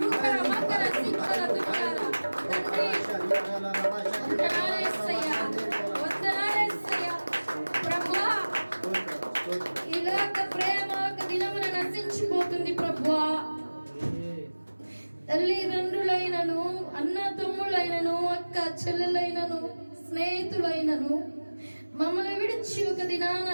రుకర మకర సిక్కల దుర్గాల తండ్రి, వందనాలేసయ్యా, వందనాలేసయ్యా. ప్రభువా ఈ లోక ప్రేమ ఒక దినమున నశించిపోతుంది ప్రభువా. తల్లిదండ్రులైనను, అన్న తమ్ముళ్ళైనను, అక్క చెల్లెలైనను, స్నేహితులైనను మమ్మల్ని విడిచి ఒక దినాన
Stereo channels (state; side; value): inverted; both; correlation -1.00